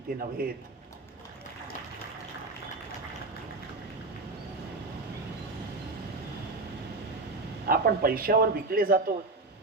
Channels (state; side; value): quieter; left; 3.4 dB